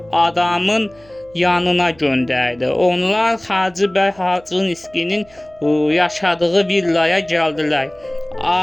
adamın yanına göndərdi. Onlar Hacı bəy Xaçınskinin yaşadığı villaya gəldilər.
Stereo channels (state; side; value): noise; right; hum, 27 dB below the sound